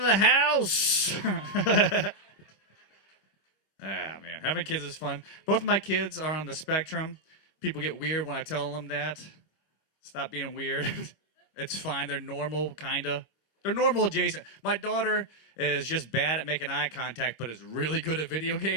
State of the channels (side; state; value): right; late; 25 ms